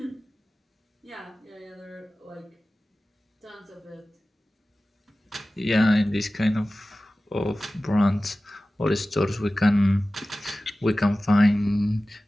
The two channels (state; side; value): normal; both; correlation 0.96